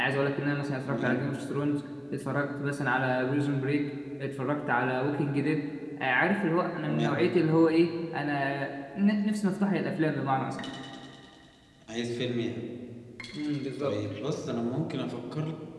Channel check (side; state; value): both; identical; correlation 1.00